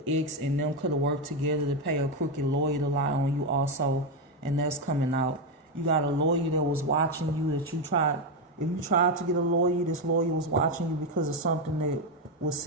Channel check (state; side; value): normal; both; correlation 0.08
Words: ex and them could have worked together to pay a crooked lawyer to lie on you also, and that's coming out. You got a lawyer that was watching you that you tried. If you tried to get a lawyer, this lawyer was watching you because of something that was